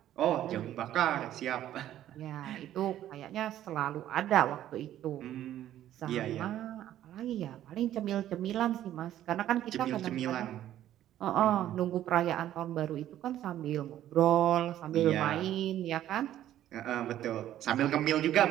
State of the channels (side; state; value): left; quieter; 12.3 dB